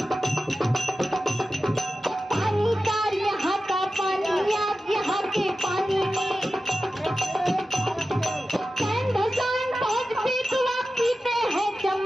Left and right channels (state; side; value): normal; both; correlation 0.93